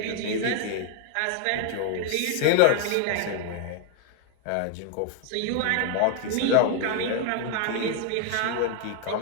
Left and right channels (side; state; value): both; different; correlation 0.00